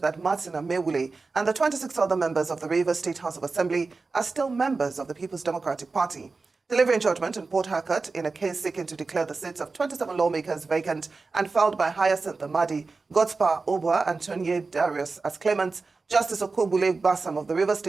Martin Amewule and the 26 other members of the Rivers State House of Assembly are still members of the People's Democratic Party. Delivering judgment in Port Harcourt in a case seeking to declare the seats of 27 lawmakers vacant and filed by Hyacinth Amadi, Godspa Obwa, and Tonye Darius as claimants, Justice Okobule Bassam of the Rivers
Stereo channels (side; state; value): left; quieter; 4.0 dB